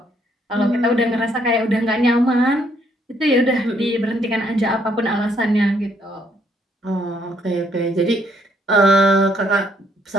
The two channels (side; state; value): both; normal; correlation 0.69